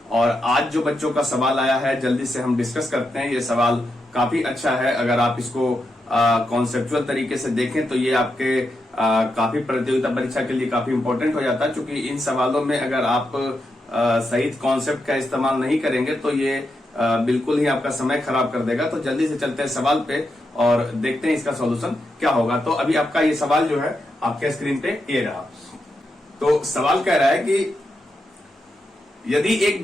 और आज जो बच्चों का सवाल आया है जल्दी से हम डिस्कस करते हैं। ये सवाल काफी अच्छा है। अगर आप इसको कॉन्सेप्चुअल तरीके से देखें तो ये आपके काफी प्रतियोगिता परीक्षा के लिए काफी इंपॉर्टेंट हो जाता है, क्योंकि इन सवालों में अगर आप सही कॉन्सेप्ट का इस्तेमाल नहीं करेंगे तो ये बिल्कुल ही आपका समय खराब कर देगा। तो जल्दी से चलते हैं सवाल पे और देखते हैं इसका सॉल्यूशन क्या होगा। तो अभी आपका ये सवाल जो है आपके स्क्रीन पे ये रहा। तो सवाल कह रहा है कि यदि एक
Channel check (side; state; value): both; normal; correlation 0.85